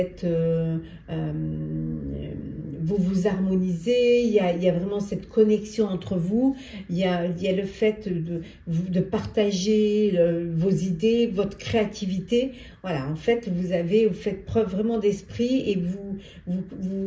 vous harmonisez, il y a vraiment cette connexion entre vous, il y a le fait de partager vos idées, votre créativité. Voilà, en fait, vous faites preuve vraiment d'esprit et vous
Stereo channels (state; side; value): identical; both; correlation 1.00